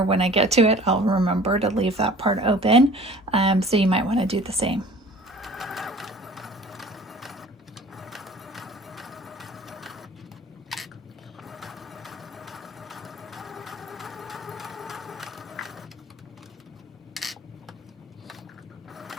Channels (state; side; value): normal; both; correlation 0.47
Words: when I get to it, I'll remember to leave that part open. So you might want to do the same.